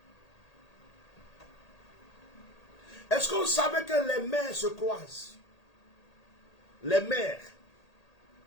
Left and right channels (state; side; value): late; right; 1.8 ms